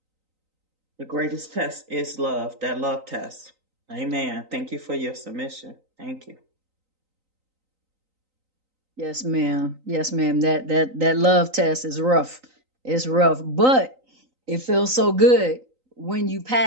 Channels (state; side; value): late; left; 3.9 ms